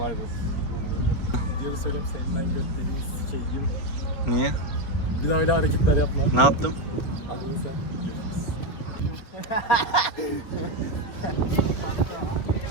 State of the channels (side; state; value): right; late; 4.3 ms